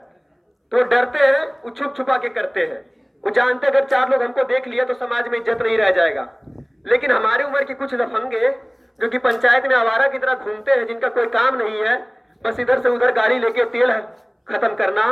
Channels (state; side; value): identical; both; correlation 1.00